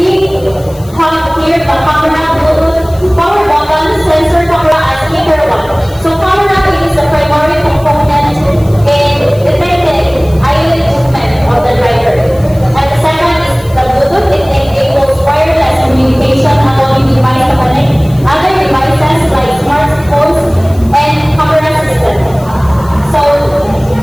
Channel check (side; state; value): left; noise; hiss, 23 dB below the sound